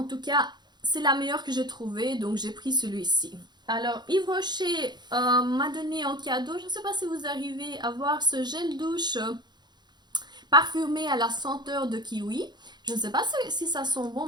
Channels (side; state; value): left; late; 0.21 ms